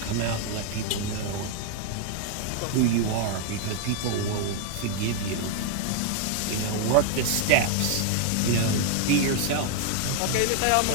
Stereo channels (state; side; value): different; both; correlation 0.00